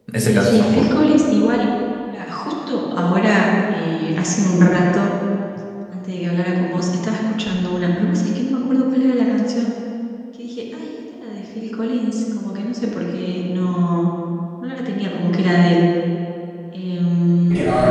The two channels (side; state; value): both; identical; correlation 1.00